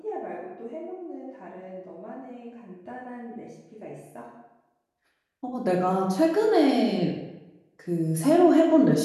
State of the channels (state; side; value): identical; both; correlation 1.00